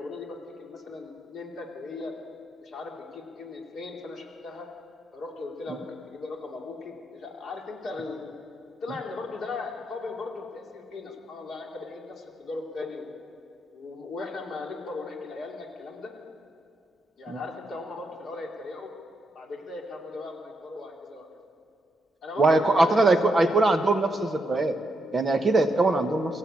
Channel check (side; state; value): both; normal; correlation 0.81